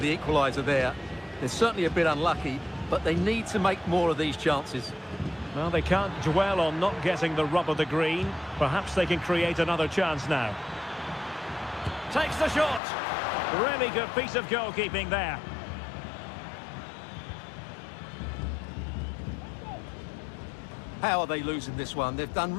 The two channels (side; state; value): right; drops out; at 12.8 s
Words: equaliser there. They're certainly a bit unlucky, but they need to make more of these chances. Well, they can't dwell on not getting the rub of the green. Perhaps they can create another chance now. Takes the shot. Really good piece of goalkeeping there. How are they losing this one? They've done